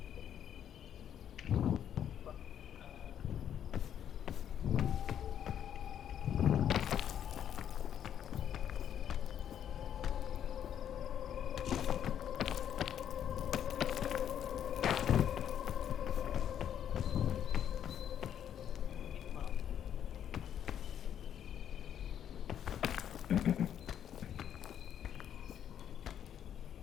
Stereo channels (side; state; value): right; quieter; 9.6 dB